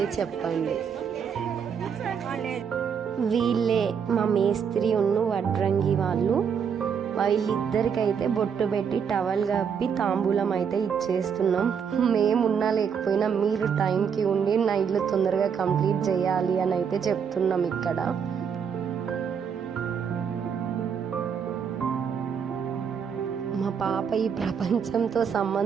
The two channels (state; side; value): quieter; left; 7.1 dB